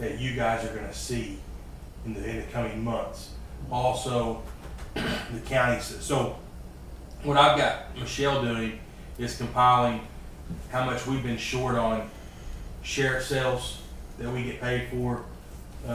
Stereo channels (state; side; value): identical; both; correlation 1.00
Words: you guys are gonna see in the coming months. Also, the counties, so what I've got Michelle doing is compiling how much we've been short on sheriff sales that we get paid for,